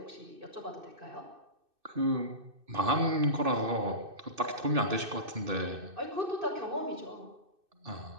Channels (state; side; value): late; left; 2.6 ms